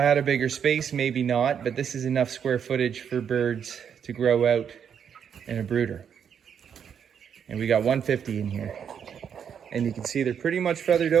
a bigger space, maybe not, but this is enough square footage for birds to grow out in a brooder. And we got 150 in here. And you can see they're pretty much feathered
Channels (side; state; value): left; quieter; 7.9 dB